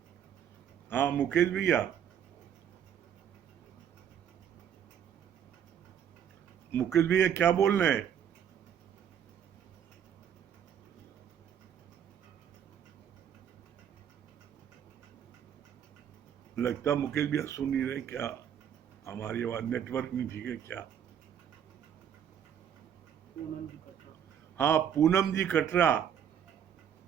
हाँ मुकेश भैया, मुकेश भैया क्या बोल रहे हैं? लगता मुकेश भैया सुन नहीं रहे क्या? हमारी आवाज नेटवर्क नहीं ठीक है क्या? हाँ पूनम जी कटरा,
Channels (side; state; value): left; quieter; 8.9 dB